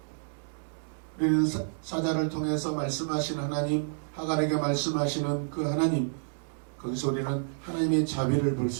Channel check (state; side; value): silent; left; digital silence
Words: 우리는 사자를 통해서 말씀하신 하나님, 하갈에게 말씀하시는 그 하나님, 거기서 우리는 하나님의 자비를 볼